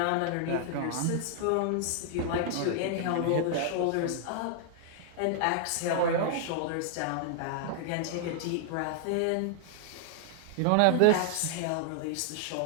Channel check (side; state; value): both; different; correlation 0.00